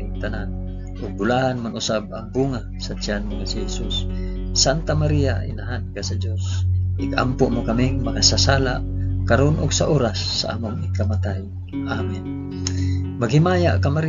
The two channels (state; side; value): identical; both; correlation 1.00